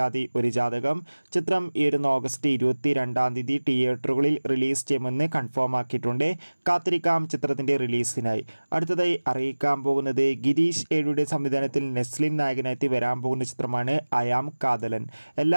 ഒരു ജാതകം. ചിത്രം ഈ ഓഗസ്റ്റ് 22 തിയേറ്ററുകളിൽ റിലീസ് ചെയ്യുമെന്ന് കൺഫേം ആക്കിയിട്ടുണ്ട്. കാത്തിരിക്കാം ചിത്രത്തിൻ്റെ റിലീസിനായി. അടുത്തതായി അറിയിക്കാൻ പോകുന്നത് ഗിരീഷ് ഏഴിയുടെ സംവിധാനത്തിൽ നെസ്ലിൻ നായകനായി വരാൻ പോകുന്ന ചിത്രമാണ് അയാം കാതലൻ.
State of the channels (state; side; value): inverted; both; correlation -1.00